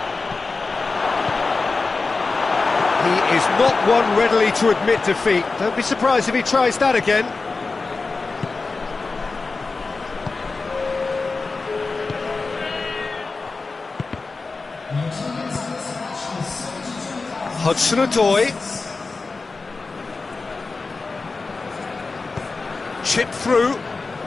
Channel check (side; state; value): right; quieter; 3.9 dB